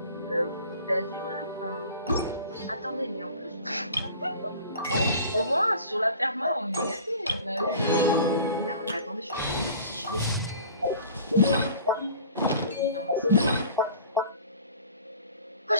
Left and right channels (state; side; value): inverted; both; correlation -0.43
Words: d'azur là. Enfin, attendez, mais en plus, bon, au moins sur la perma on est gâtés. On a eu là, mais attendez, je sais plus si je l'ai. Oui, non, c'est ça. Oh,